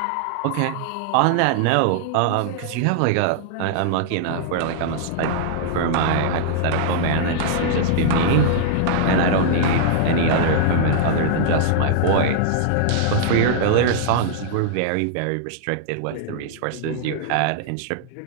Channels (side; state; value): both; different; correlation -0.01